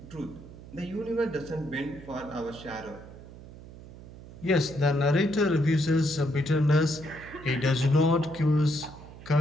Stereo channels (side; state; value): right; noise; hum, 17 dB below the sound